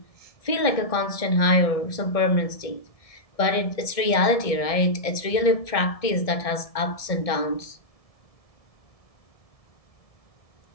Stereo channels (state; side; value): late; right; 1.7 ms